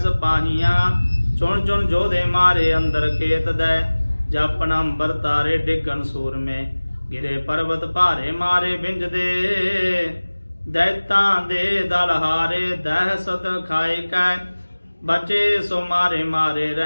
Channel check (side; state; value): both; inverted; correlation -1.00